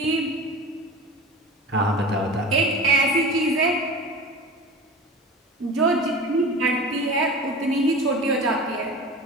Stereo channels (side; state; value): both; normal; correlation 0.34